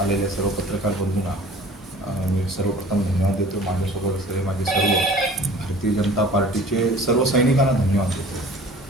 सर्व पत्रकार बंधूंना मी सर्वप्रथम धन्यवाद देतो. माझ्यासोबत असलेले माझे सर्व भारतीय जनता पार्टीचे सर्व सैनिकांना धन्यवाद देतो.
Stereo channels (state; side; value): normal; both; correlation 0.46